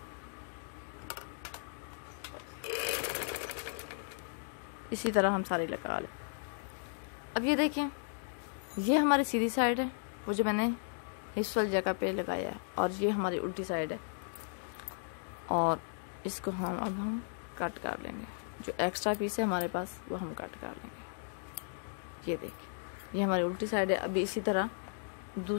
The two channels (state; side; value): silent; right; digital silence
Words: इसी तरह हम सारी लगा लें। अब ये देखें, ये हमारी सीधी साइड है, वो जो मैंने हिप्स वाली जगह पे लगाया है, और ये हमारी उल्टी साइड है। और इसको हम अब कट कर लेंगे। जो एक्स्ट्रा पीस है हमारे पास वो हम कट कर लेंगे। ये देखिए, ये हमारी उल्टी साइड है। अभी इसी तरह